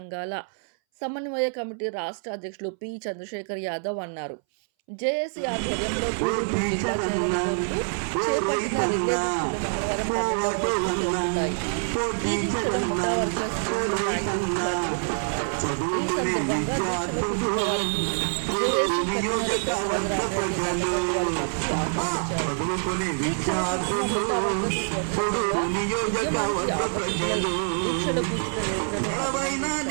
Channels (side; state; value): left; silent; 61 dB below the other